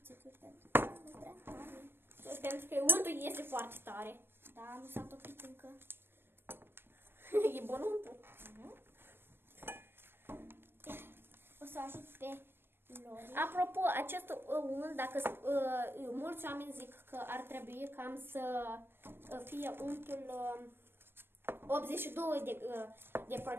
pentru că nu prea tare. Pentru că untul este foarte tare. Da, nu s-a topit încă. E bun untul. O să ajut pe Lori. Apropo, acest unt, dacă mulți oameni zic că ar trebui cam să fie untul 82 de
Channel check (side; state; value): left; late; 0.10 ms